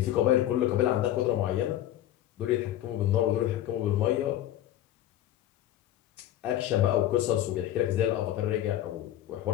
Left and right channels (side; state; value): right; quieter; 12.9 dB